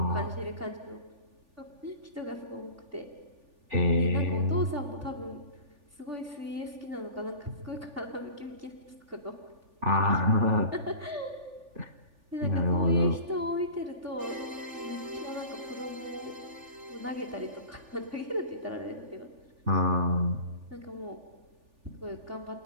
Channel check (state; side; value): late; left; 3.4 ms